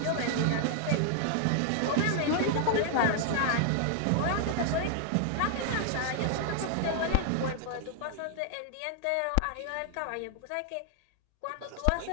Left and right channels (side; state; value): both; different; correlation 0.00